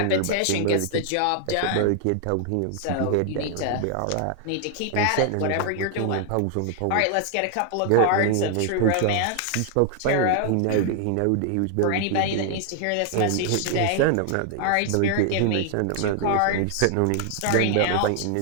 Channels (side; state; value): both; different; correlation 0.00